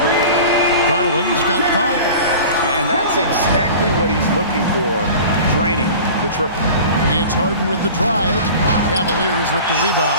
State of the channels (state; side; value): inverted; both; correlation -0.39